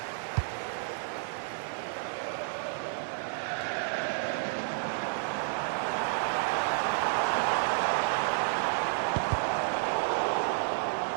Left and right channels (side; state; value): left; silent; digital silence